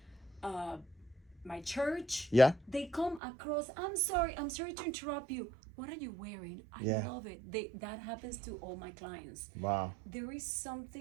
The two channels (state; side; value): drops out; left; at 3.2 s